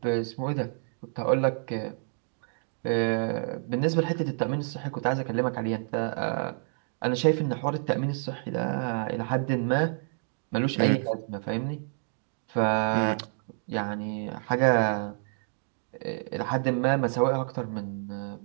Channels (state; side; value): silent; left; digital silence